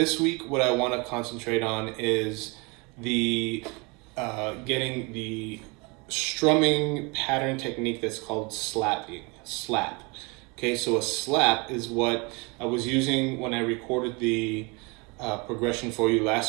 week what I want to concentrate on is getting the strumming pattern technique that's called slap. Okay, so a slap is what I was using when I recorded the progression for you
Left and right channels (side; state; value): left; quieter; 28.8 dB